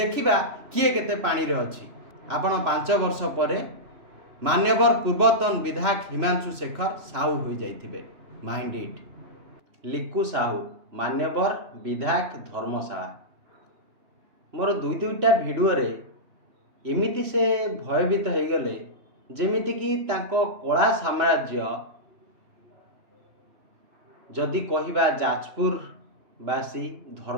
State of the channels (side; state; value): left; late; 3.0 ms